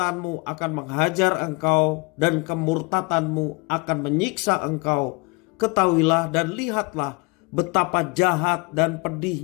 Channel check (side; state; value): right; quieter; 28.6 dB